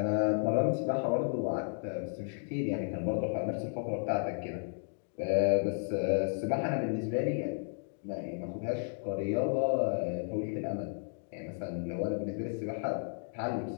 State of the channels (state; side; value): silent; right; digital silence